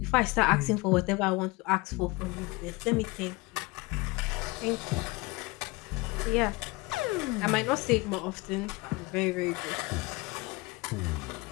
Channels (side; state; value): right; quieter; 23.7 dB